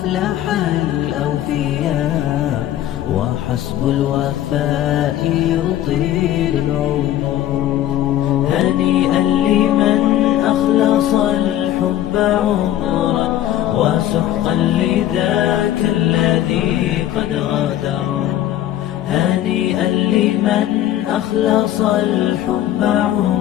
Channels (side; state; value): right; quieter; 12.5 dB